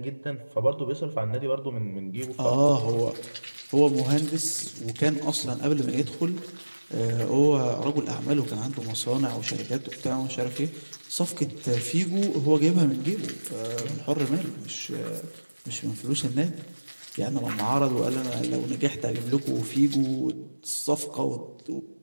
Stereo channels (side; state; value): both; inverted; correlation -1.00